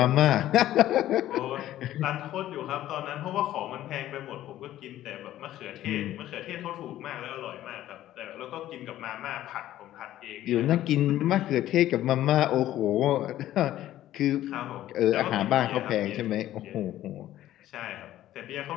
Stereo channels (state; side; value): quieter; right; 13.5 dB